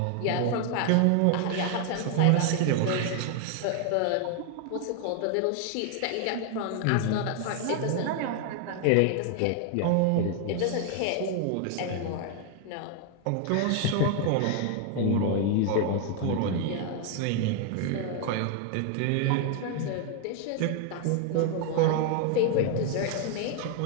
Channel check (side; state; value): both; different; correlation 0.00